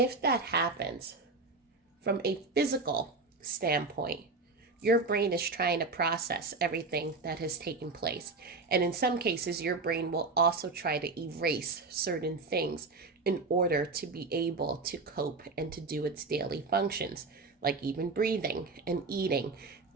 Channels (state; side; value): quieter; left; 3.8 dB